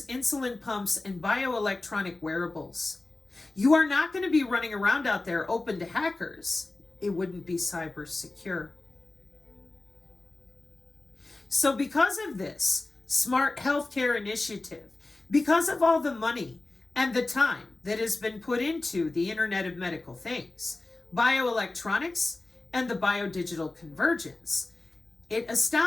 insulin pumps, and bioelectronic wearables. You are not going to be running around out there open to hackers. It wouldn't be cyber secure. So because of this smart healthcare initiative, because of all the money and the time that has been put into the Internet of Medical Things, bioelectronics, and the biodigital convergence, it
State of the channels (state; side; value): quieter; right; 3.1 dB